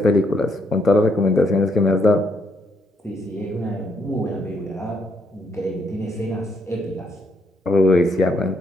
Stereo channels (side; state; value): both; normal; correlation 0.74